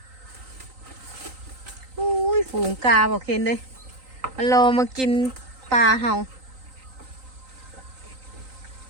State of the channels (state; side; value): late; left; 3.9 ms